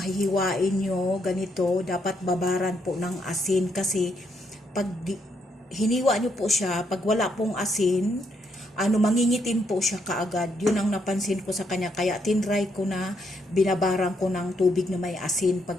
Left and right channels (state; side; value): normal; both; correlation 0.75